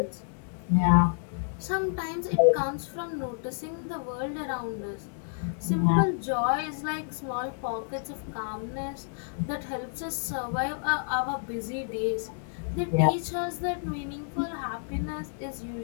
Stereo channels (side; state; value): right; silent; digital silence